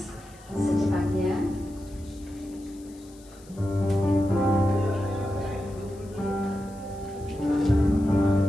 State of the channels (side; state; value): left; noise; hiss, 25 dB below the sound